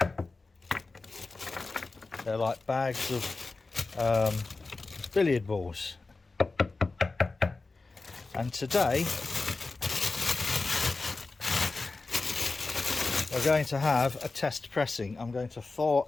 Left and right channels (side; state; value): right; quieter; 3.7 dB